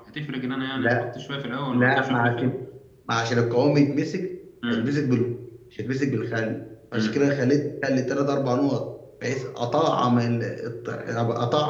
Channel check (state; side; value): identical; both; correlation 1.00